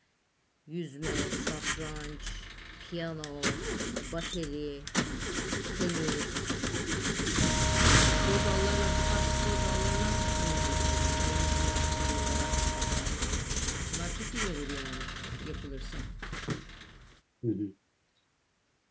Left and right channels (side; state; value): both; identical; correlation 1.00